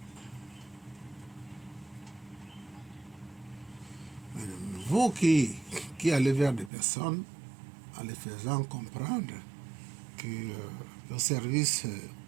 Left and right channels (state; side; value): drops out; left; at 6.7 s